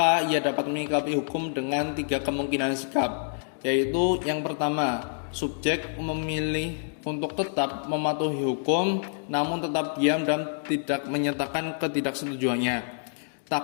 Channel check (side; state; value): right; silent; digital silence